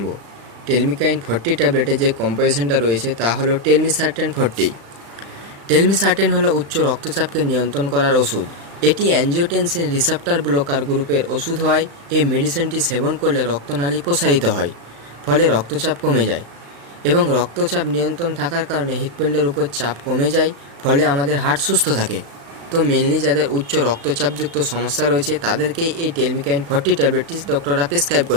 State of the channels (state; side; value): late; left; 35 ms